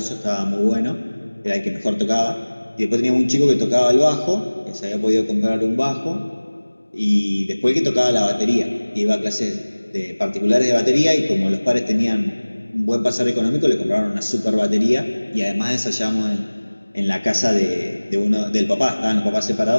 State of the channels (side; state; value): both; inverted; correlation -1.00